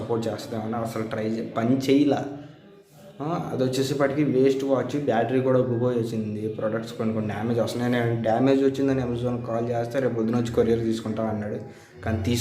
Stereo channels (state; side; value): identical; both; correlation 1.00